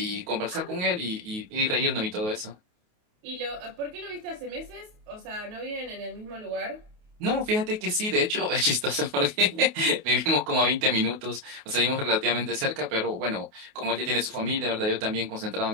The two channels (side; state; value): left; late; 28 ms